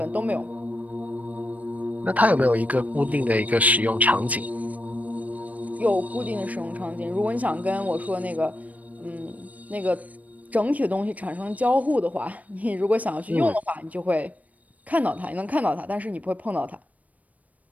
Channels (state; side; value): late; left; 0.072 ms